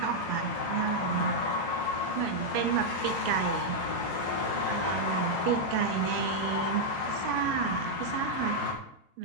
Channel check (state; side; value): normal; both; correlation -0.03